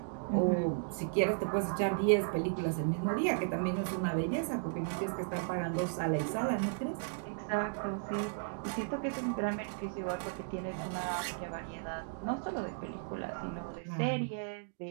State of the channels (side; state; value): left; silent; digital silence